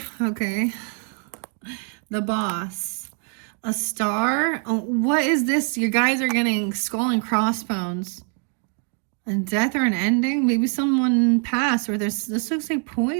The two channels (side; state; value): left; quieter; 39.6 dB